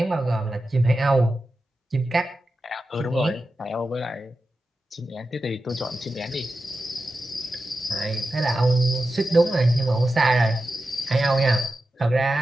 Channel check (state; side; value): normal; both; correlation 0.92